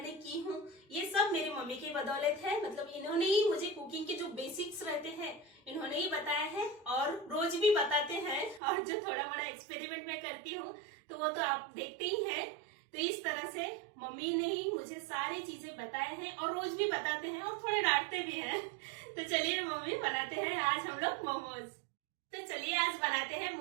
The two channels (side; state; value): left; drops out; at 8.6 s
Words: की हूँ, ये सब मेरी मम्मी की बदौलत है। मतलब इन्होंने ही मुझे कुकिंग के जो बेसिक्स रहते हैं इन्होंने ही बताया है और रोज भी बताते हैं। और जो थोड़ा बड़ा एक्सपेरिमेंट मैं करती हूँ तो वो तो आप देखते ही हैं। तो इस तरह से मम्मी ने ही मुझे सारी चीजें बताए हैं और रोज भी बताते हैं और थोड़े डांटते भी हैं। तो चलिए मम्मी बनाते हैं आज हम लोग मोमोज। तो चलिए आज बनाते हैं